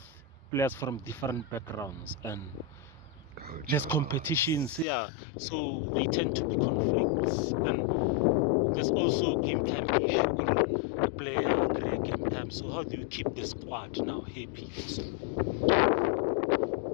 players from different backgrounds and there's competitions, yeah. So they tend to be conflicts. And there's also game time issue. The player agree game time. So how do you keep the squad now happy also?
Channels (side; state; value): right; drops out; at 4.9 s